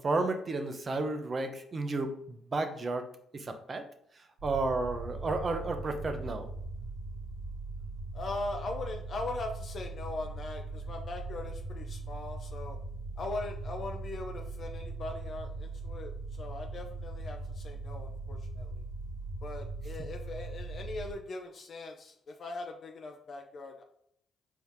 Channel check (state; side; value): normal; both; correlation 0.77